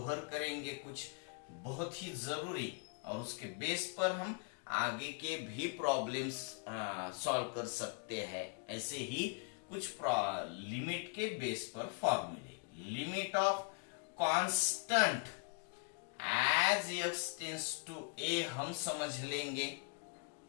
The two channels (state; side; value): quieter; right; 38.1 dB